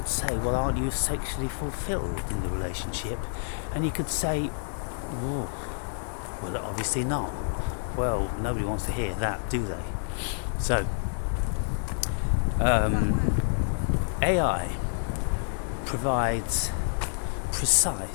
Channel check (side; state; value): right; silent; digital silence